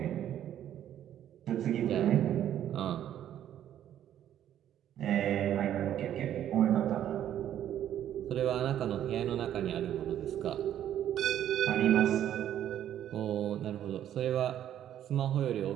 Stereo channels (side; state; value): left; quieter; 11.0 dB